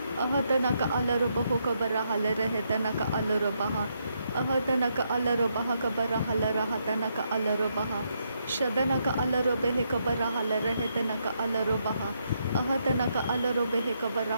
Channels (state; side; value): inverted; both; correlation -0.78